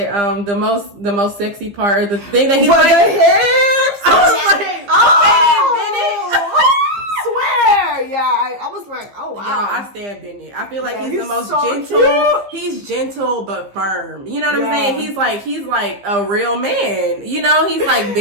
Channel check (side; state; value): left; late; 15 ms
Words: the most sexy part of the thing that he liked? The hips! I was like, I was like, oh wow. Y'all, I stand Bennett. I feel like he's the most so gentle. Cute. He's gentle but firm. You know what I'm saying? He's like a real man. He's like